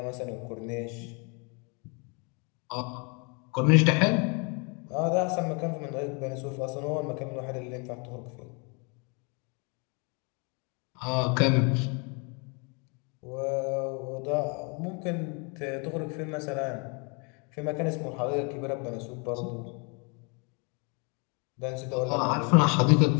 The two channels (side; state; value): right; quieter; 33.7 dB